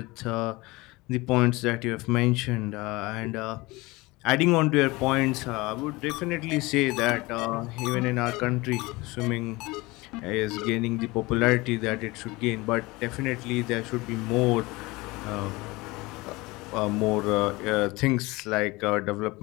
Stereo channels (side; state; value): right; quieter; 22.4 dB